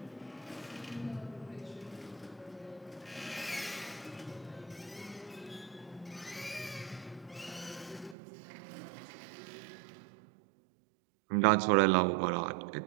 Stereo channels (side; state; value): left; drops out; at 8.2 s